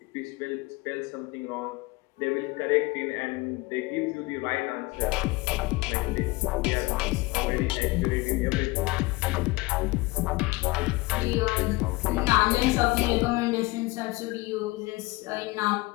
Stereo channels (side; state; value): right; quieter; 22.2 dB